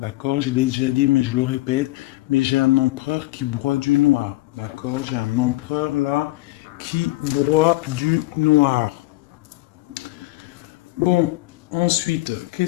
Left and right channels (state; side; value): quieter; right; 19.1 dB